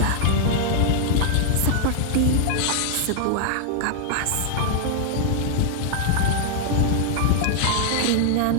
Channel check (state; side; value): different; both; correlation -0.01